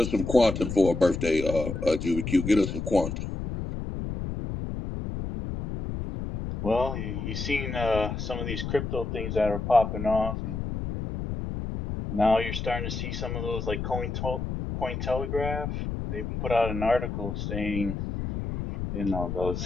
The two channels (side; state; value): left; noise; rumble, 4 dB below the sound